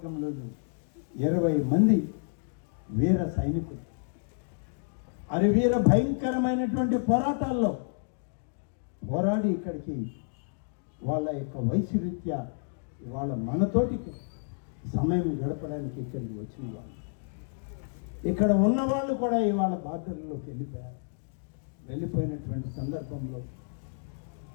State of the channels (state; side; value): silent; right; digital silence